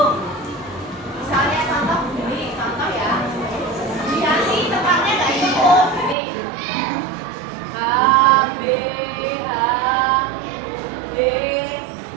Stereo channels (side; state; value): left; drops out; at 6.2 s